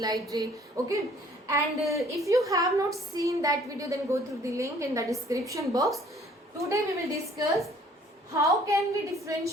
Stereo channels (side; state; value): both; normal; correlation 0.57